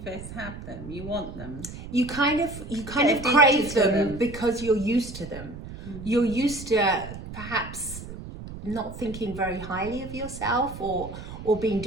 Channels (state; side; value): noise; right; rumble, 12 dB below the sound